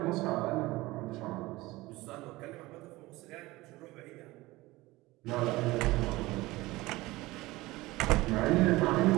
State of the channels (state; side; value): quieter; left; 19.8 dB